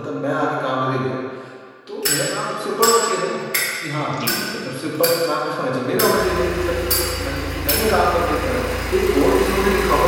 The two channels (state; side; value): identical; both; correlation 1.00